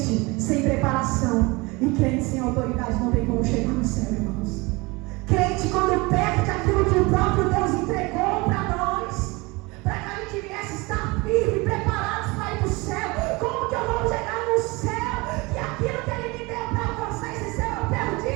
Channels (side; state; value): left; quieter; 24.8 dB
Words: sem preparação e crente sem autoridade não tem como chegar no céu, irmãos. Crente, quando perde aquilo que o próprio Deus entregou para nós, para que a gente viesse estar firme, preparados para ir para o céu. Como que eu vou chegar no céu? Que aquilo que Ele me deu para alcançar esse céu eu